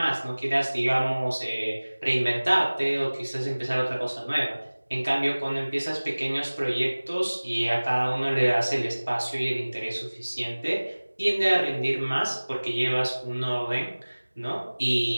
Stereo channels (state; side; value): inverted; both; correlation -1.00